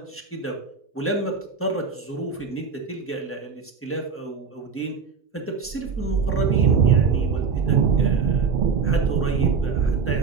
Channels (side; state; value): left; quieter; 5.5 dB